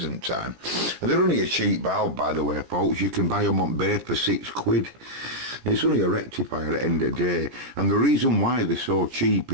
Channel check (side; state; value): left; late; 17 ms